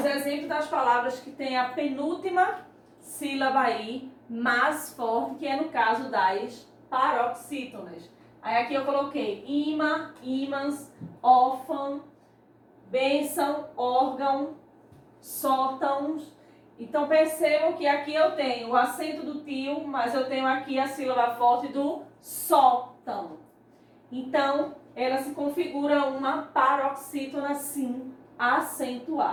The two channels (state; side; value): identical; both; correlation 1.00